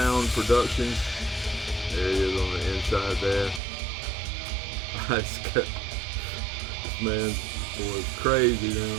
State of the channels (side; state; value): left; drops out; at 3.6 s